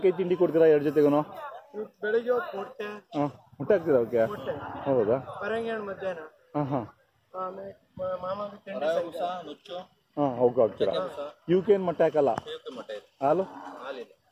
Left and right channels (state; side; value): identical; both; correlation 1.00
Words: ತಿಂಡಿ ಕೊಡ್ತೀರಾ 2 ಜೊತೆಗೂ? ಬೆಳಿಗ್ಗೆ ಮುಟ್ಟೆ ಹಾಕ್ತೀರಾ ಅವಕ್ಕೆ? ಹೌದಾ? ಮಧ್ಯಾಹ್ನ ಅವಕ್ಕೆ ಹಾಕ್ತೀರಾ? ಇವಕ್ಕೇನು ಮೊಟ್ಟೆ ಹಾಕಲ್ಲ? ಹಾಲು?